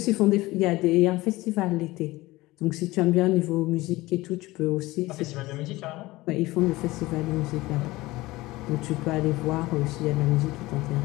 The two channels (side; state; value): right; quieter; 19.5 dB